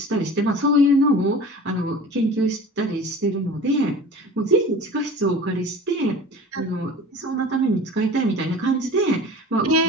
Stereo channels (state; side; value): normal; both; correlation 0.39